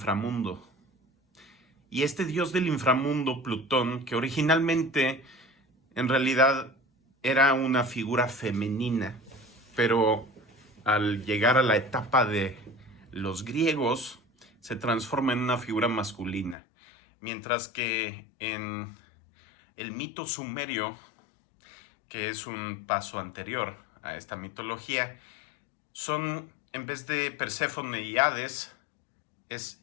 Y este dios del inframundo, Plutón, que originalmente en realidad era una figura femenina, pero al llegar a la etapa de los griegos se transforma en una figura masculina, mientras que en el mito sumerio, que es un paso anterior a esta mitología, son, en vez de Perséfone y Hades,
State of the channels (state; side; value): drops out; right; at 16.6 s